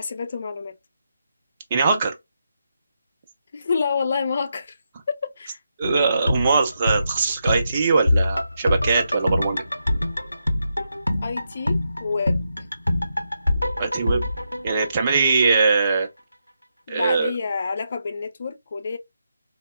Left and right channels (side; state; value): both; inverted; correlation -0.84